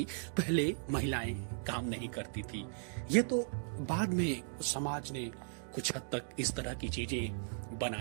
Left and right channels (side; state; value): left; silent; digital silence